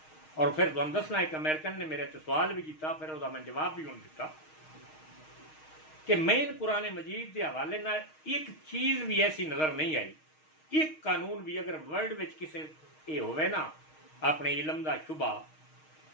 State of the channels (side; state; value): right; late; 6.4 ms